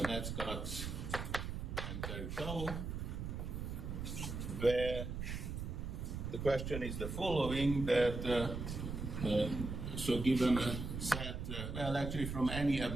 and Terutau, where the question is the following, that so given a set, well, actually from any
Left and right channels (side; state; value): right; noise; rumble, 4 dB below the sound